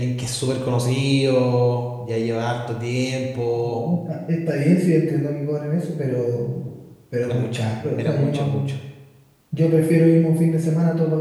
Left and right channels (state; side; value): identical; both; correlation 1.00